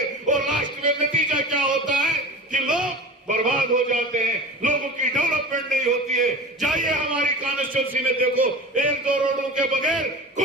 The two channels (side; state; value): both; normal; correlation 0.34